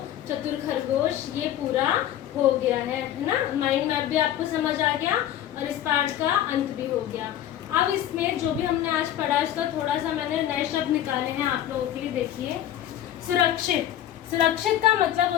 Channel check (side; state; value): right; quieter; 11.7 dB